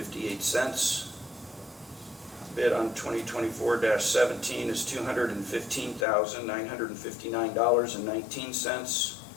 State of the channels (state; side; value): drops out; right; at 6.1 s